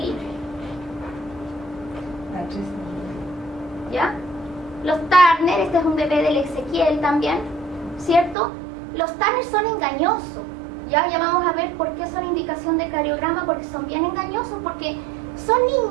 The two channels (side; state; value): left; drops out; at 8.3 s